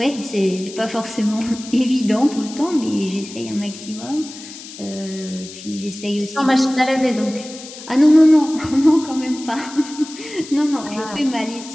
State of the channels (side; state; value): left; noise; hiss, 15 dB below the sound